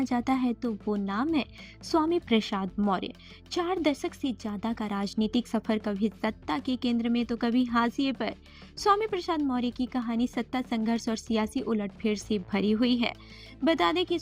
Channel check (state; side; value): identical; both; correlation 1.00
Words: जाता है तो वो नाम है स्वामी प्रसाद मौर्य। 4 दशक से ज्यादा का राजनीतिक सफर, कभी सत्ता के केंद्र में तो कभी हाशिए पर। स्वामी प्रसाद मौर्य की कहानी सत्ता संघर्ष और सियासी उलटफेर से भरी हुई है। बता दें कि